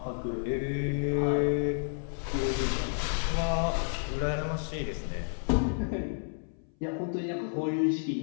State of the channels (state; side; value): silent; right; 57 dB below the other